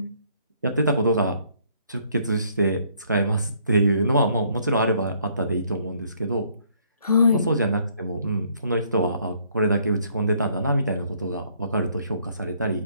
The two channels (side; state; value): both; inverted; correlation -0.65